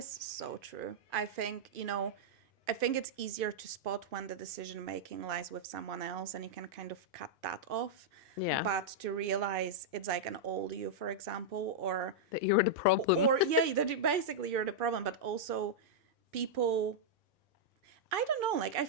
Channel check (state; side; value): normal; both; correlation -0.06